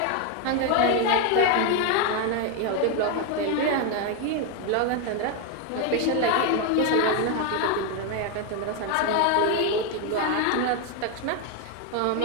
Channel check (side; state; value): both; different; correlation 0.01